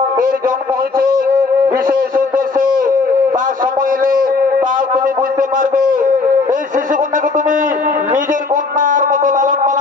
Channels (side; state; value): right; quieter; 4.1 dB